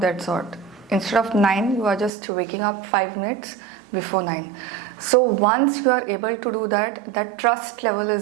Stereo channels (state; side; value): drops out; left; at 2.1 s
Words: that sort. Instead of 9, you are just waking up 5 minutes before 9. So once you are able to do that, that trust level